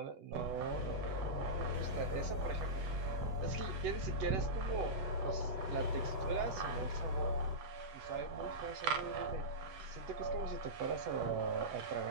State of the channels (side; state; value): left; late; 8.1 ms